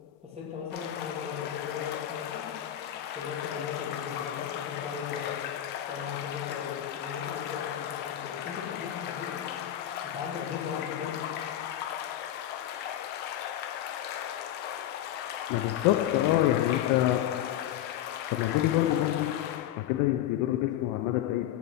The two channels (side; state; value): right; quieter; 11.8 dB